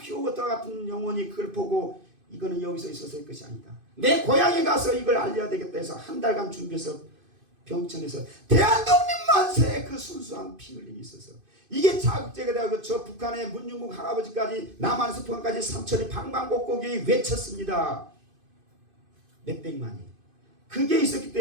같은 영혼이 그걸 보고 이거는 여기서 있어서의 것이 아니다. 내 고향에 가서 이걸 알려야 되겠다 해서 한 달간 준비해서 병천에서 대한독립만세! 그 순수한 피 흘림이 있어서 이게 자극제가 되고 저 북한의 문중국 할아버지까지 남한에서 북한까지 삼천리 방방곡곡이 외쳤습니다. 몇백만이. 그게 있었기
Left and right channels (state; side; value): late; left; 2.5 ms